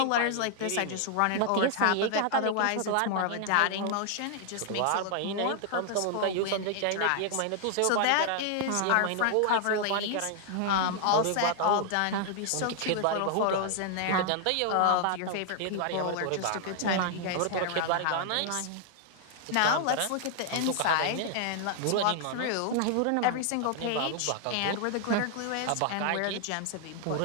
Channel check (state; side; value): different; both; correlation 0.00